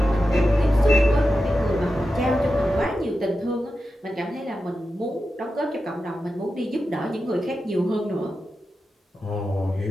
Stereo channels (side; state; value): both; normal; correlation 0.91